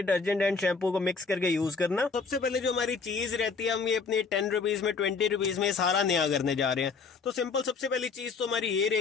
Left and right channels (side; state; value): right; quieter; 4.9 dB